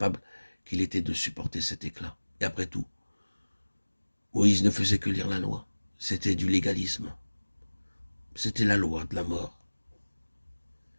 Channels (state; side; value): inverted; both; correlation -1.00